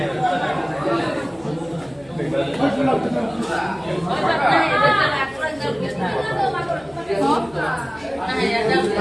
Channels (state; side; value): noise; left; hum, 27 dB below the sound